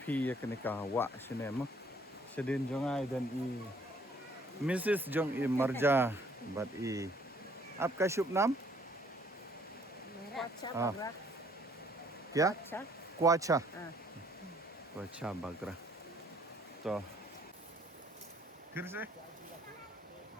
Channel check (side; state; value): both; normal; correlation 0.62